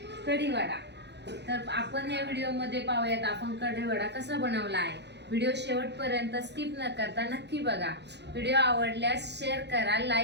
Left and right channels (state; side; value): late; left; 0.50 ms